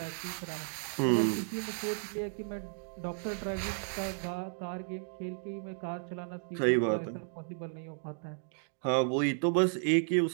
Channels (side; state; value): left; silent; digital silence